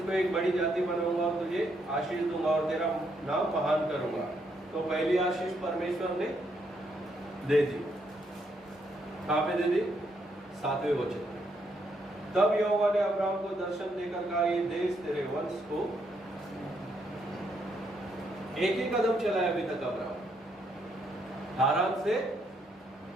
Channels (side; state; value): both; normal; correlation 0.75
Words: एक बड़ी जाति बनाऊंगा और तुझे आशीष दूंगा और तेरा नाम महान करूंगा। तो पहली आशीष परमेश्वर ने दे दी। कहां पे दे दी? 7वें वचन में। तब यहोवा ने अब्राहम को दर्शन देकर कहा, ये देश तेरे वंश को। एक ही कदम चला है अभी तक अब्राहम, हारान से